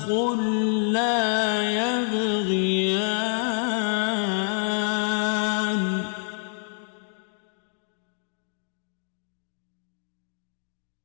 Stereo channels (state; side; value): silent; right; 60 dB below the other